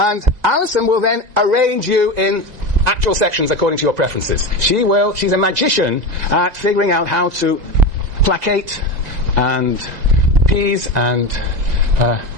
Alison will then arrange you in actual sections according to your preferences. She's a magician at figuring out how to placate and appease and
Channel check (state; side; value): late; left; 2.0 ms